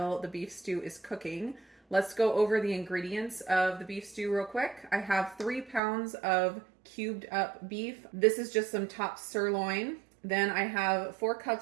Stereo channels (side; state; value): left; drops out; at 5.8 s